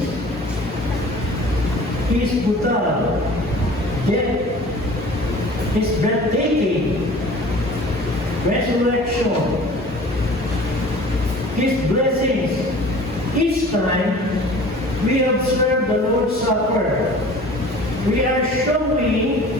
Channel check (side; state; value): both; normal; correlation 0.45